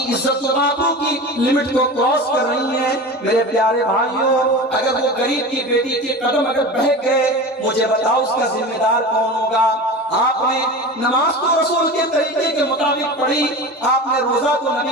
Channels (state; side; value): normal; both; correlation 0.31